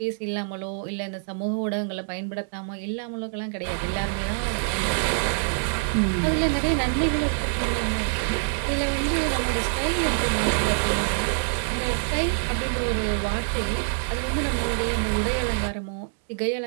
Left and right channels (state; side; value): silent; left; 61 dB below the other